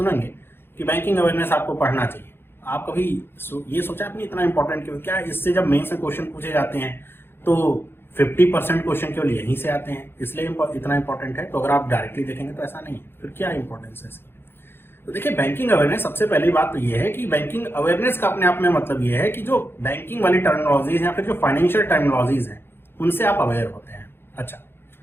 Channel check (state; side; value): late; right; 0.11 ms